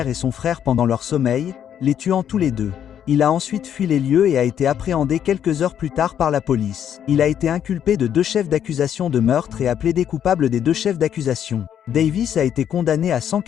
et son frère pendant leur sommeil, les tuant tous les deux. Il a ensuite fui les lieux et a été appréhendé quelques heures plus tard par la police. Il a été inculpé de 2 chefs d'accusation de meurtre et a plaidé coupable des 2 chefs d'accusation. Davis a été condamné à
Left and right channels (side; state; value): right; quieter; 9.4 dB